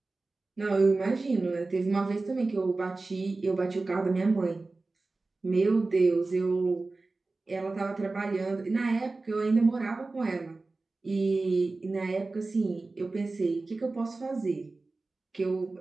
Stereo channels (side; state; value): left; quieter; 3.5 dB